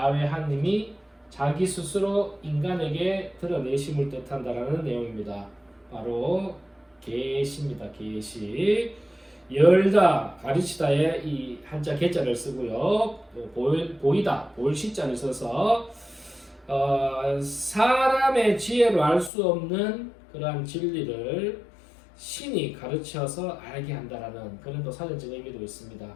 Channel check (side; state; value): right; drops out; at 19.3 s